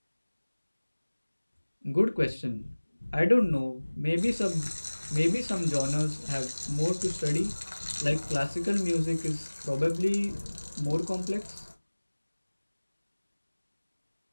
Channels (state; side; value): inverted; both; correlation -1.00